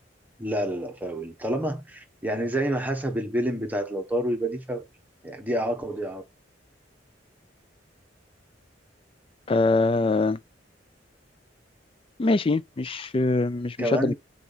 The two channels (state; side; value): normal; both; correlation 0.67